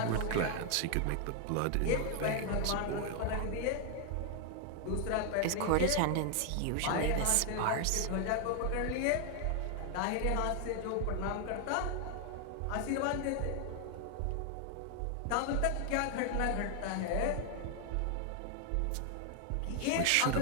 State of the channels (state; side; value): different; both; correlation 0.00